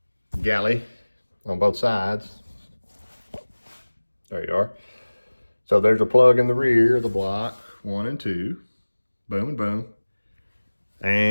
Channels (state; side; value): inverted; both; correlation -1.00